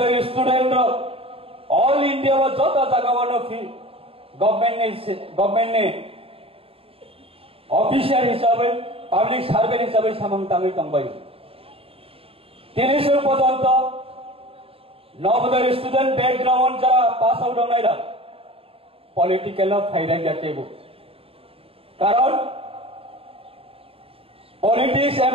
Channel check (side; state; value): left; late; 0.27 ms